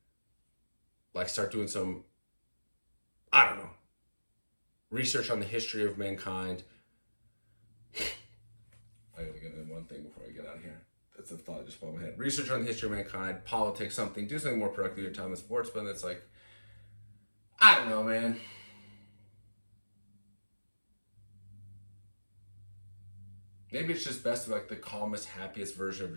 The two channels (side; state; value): both; inverted; correlation -1.00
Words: Like start doing some, I don't know, research on the history of mankind. I gotta get in one thing before I get out of here. That's a thought that just popped in my head. Research on the history of mankind, politics, something. Do something more productive with your time in sports, but it's like, I don't know, man. Maybe it's just best to be like the calmest, happiest version of